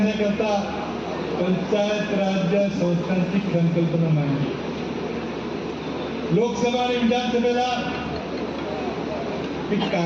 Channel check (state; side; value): identical; both; correlation 1.00